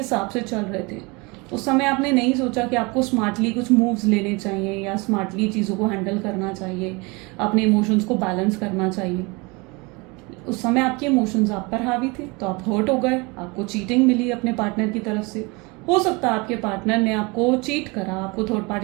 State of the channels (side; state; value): left; quieter; 27.0 dB